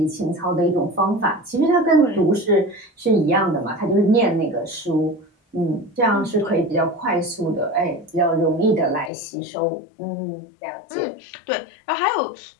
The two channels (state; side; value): drops out; right; at 9.1 s